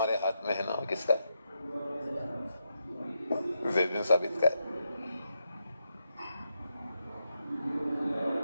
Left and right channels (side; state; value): both; inverted; correlation -0.84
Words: ہاتھ میں ہے نا، وہ کس کا ہے؟ زید بن ثابت کا ہے.